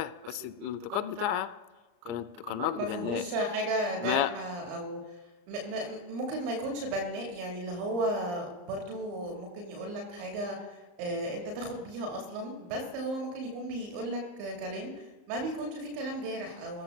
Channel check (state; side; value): late; left; 34 ms